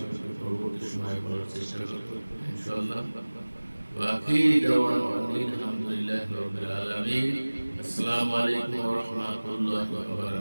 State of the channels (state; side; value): inverted; both; correlation -1.00